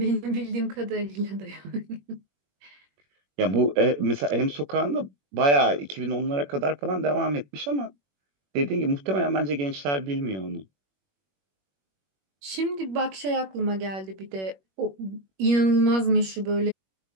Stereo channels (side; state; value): left; late; 21 ms